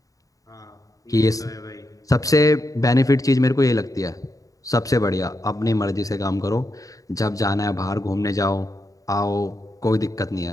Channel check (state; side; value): late; right; 0.17 ms